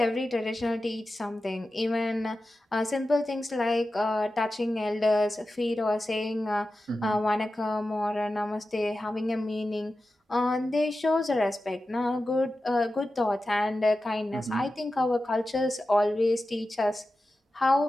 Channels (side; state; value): both; normal; correlation 0.93